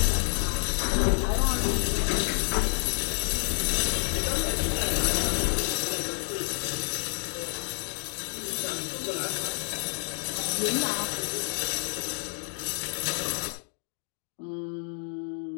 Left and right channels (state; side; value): silent; right; 55 dB below the other